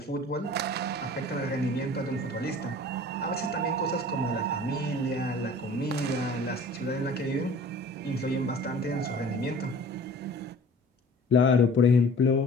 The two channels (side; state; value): both; normal; correlation 0.45